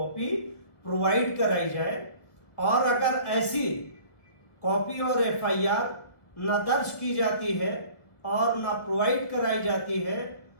प्रोवाइड कराई जाए। और अगर ऐसी कॉपी और एफआईआर न दर्ज की जाती है और न प्रोवाइड कराई जाती है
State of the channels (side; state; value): right; late; 1.4 ms